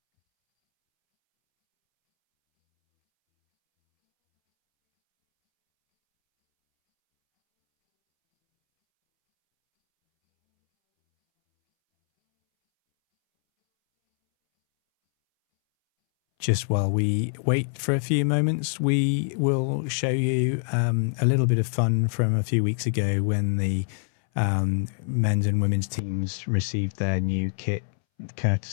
Just while we wait for a few moments, we will show you a little bit of fun from a few weeks ago when the men's and women's teams received their new kit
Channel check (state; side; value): silent; right; 62 dB below the other